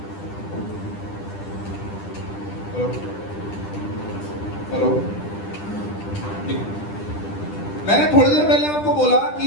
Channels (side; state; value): right; late; 10 ms